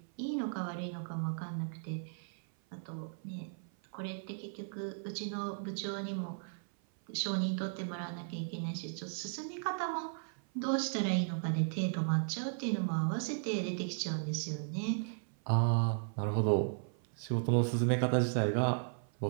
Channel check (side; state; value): left; silent; 54 dB below the other